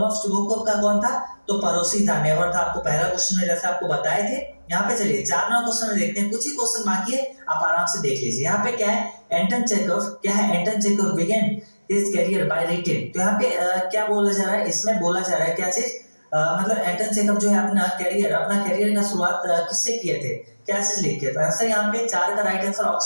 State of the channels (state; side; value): inverted; both; correlation -1.00